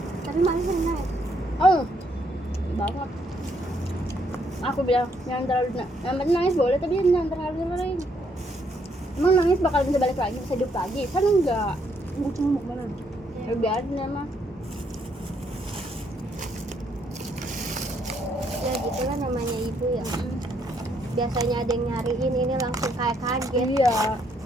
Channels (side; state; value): both; normal; correlation 0.72